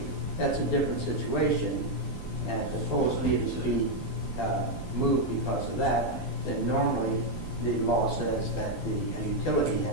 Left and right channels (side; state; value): right; late; 11 ms